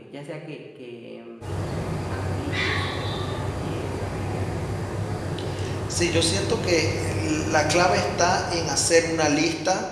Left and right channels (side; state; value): both; identical; correlation 1.00